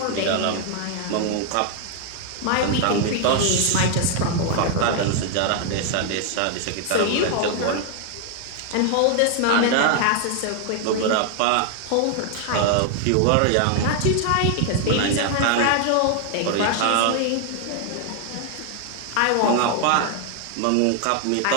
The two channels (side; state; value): both; different; correlation 0.00